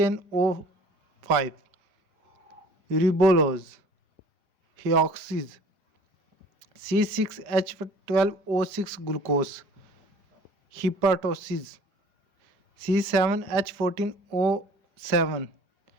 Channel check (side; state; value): left; late; 4.9 ms